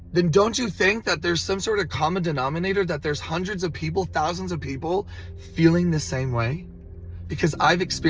then don't you think that there's some sort of common denominator, that there's hundreds of people, thousands of people feeling the same way? Because I've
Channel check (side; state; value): both; identical; correlation 1.00